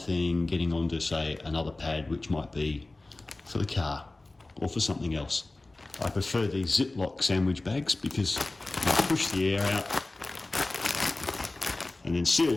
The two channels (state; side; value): quieter; right; 3.0 dB